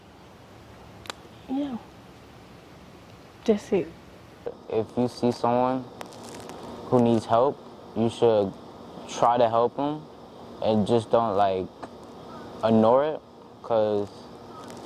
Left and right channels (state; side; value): identical; both; correlation 1.00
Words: Yeah, that's it. If you see someone who needs help, you should try to help them and just don't ignore it, because